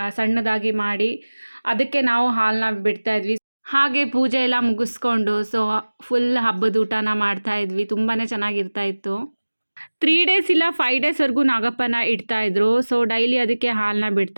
ಸಣ್ಣದಾಗಿ ಮಾಡಿ ಅದಕ್ಕೆ ನಾವು ಹಾಲನ್ನ ಬಿಡ್ತಾಯಿದ್ವಿ. ಹಾಗೆ ಪೂಜೆ ಎಲ್ಲ ಮುಗಿಸ್ಕೊಂಡು ಸೊ ಫುಲ್ ಹಬ್ಬದ ಊಟನ ಮಾಡ್ತಾಯಿದ್ವಿ. ತುಂಬಾ ಚೆನ್ನಾಗಿರ್ತಾ ಇತ್ತು. 3 ಡೇಸ್ ಇಲ್ಲ 5 ಡೇಸ್ವರೆಗೂ ನಾಗಪ್ಪನ ಇಡ್ತಾಯಿದ್ರು. ಸೊ ಡೈಲಿ ಅದಕ್ಕೆ ಹಾಲನ್ನ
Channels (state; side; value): inverted; both; correlation -1.00